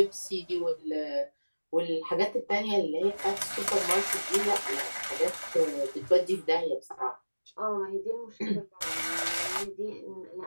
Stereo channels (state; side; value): inverted; both; correlation -1.00